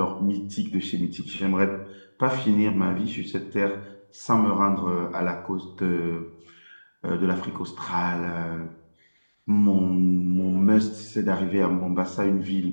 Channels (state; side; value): inverted; both; correlation -1.00